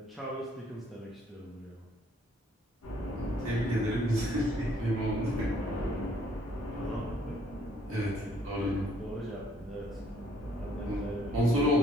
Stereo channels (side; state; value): both; normal; correlation 0.64